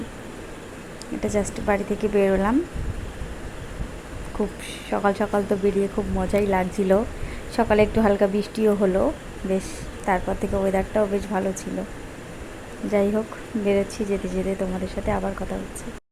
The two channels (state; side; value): identical; both; correlation 1.00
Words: এটা জাস্ট বাড়ি থেকে বেরোলাম। খুব সকাল সকাল তো বেরিয়ে খুব মজাই লাগছিল। সকালে একটু হালকা বৃষ্টিও হলো বেশ, তারপর থেকে ওয়েদারটাও বেশ ভালো ছিল। যাই হোক, বেরোচ্ছি, যেতে যেতে তোমাদের সাথে আবার কথা হচ্ছে।